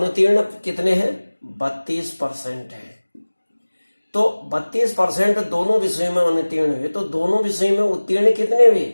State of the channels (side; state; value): both; inverted; correlation -1.00